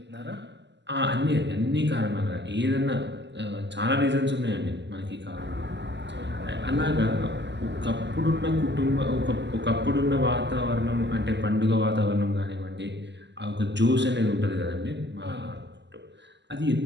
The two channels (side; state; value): left; late; 0.51 ms